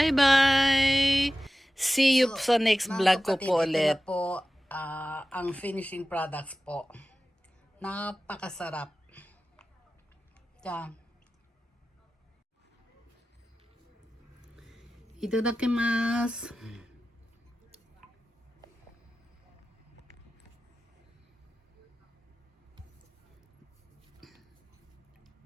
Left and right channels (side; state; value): both; normal; correlation 0.96